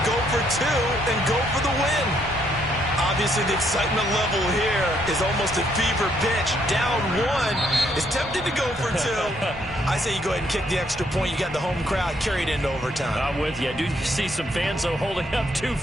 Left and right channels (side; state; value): both; normal; correlation 0.71